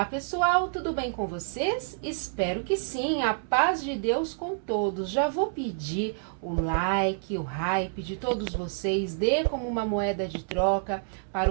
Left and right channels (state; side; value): silent; left; 59 dB below the other